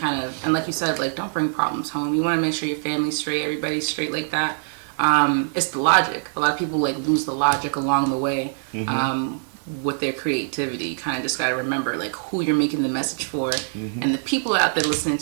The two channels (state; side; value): silent; left; digital silence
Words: of, and like you said, like don't bring problems home. You want to make sure your family's straight, everybody's straight like that. it's the logic. A lot of people like lose the logic along the way. With their creativity, you kind of just got to remember like who you're making the message for, and the people out there listening